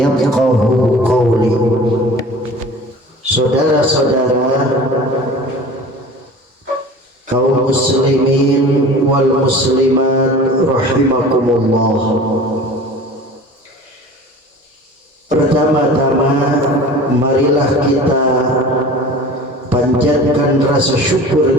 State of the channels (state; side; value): normal; both; correlation 0.40